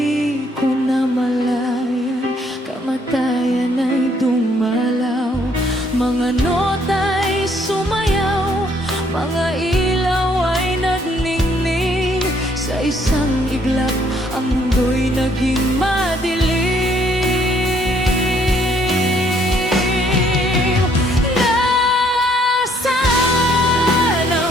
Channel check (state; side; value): normal; both; correlation 0.66